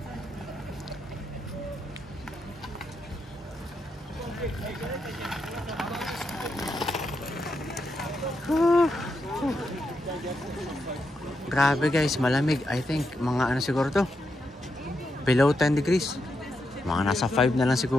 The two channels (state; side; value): normal; both; correlation 0.83